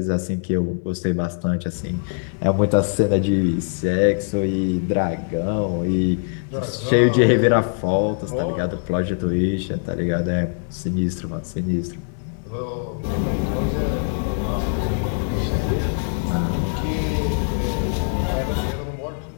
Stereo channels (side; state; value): right; silent; digital silence